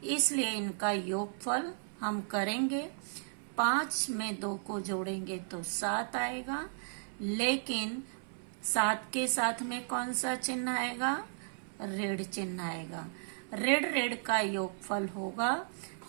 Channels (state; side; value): silent; left; 55 dB below the other